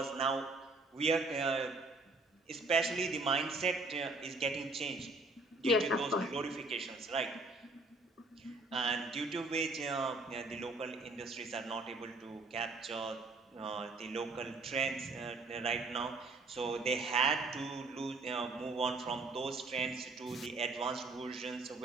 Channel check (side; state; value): left; quieter; 3.2 dB